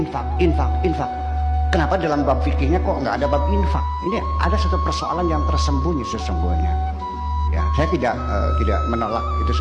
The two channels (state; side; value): identical; both; correlation 1.00